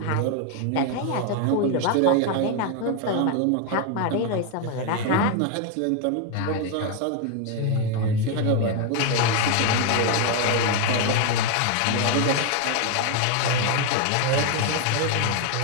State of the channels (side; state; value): both; different; correlation 0.01